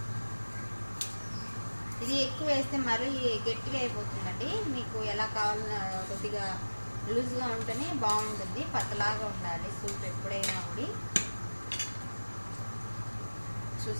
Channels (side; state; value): both; inverted; correlation -1.00